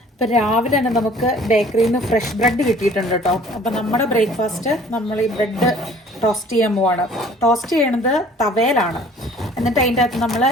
ഇപ്പം രാവിലെ തന്നെ നമുക്ക് ബേക്കറിയിൽ നിന്ന് ഫ്രഷ് ബ്രെഡ് കിട്ടിയിട്ടുണ്ട് കേട്ടോ. അപ്പം നമ്മുടെ ബ്രേക്ക്ഫാസ്റ്റ് നമ്മൾ ഈ ബ്രെഡ് ടോസ്റ്റ് ചെയ്യാൻ പോവാണ്. ടോസ്റ്റ് ചെയ്യണത് തവയിലാണ്. എന്നിട്ട് അതിൻ്റെ അകത്ത് നമ്മൾ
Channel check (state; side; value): normal; both; correlation 0.52